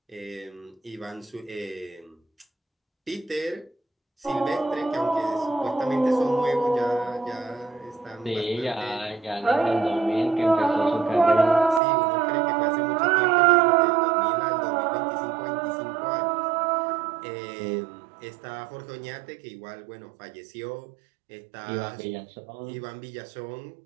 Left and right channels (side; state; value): left; drops out; at 11.8 s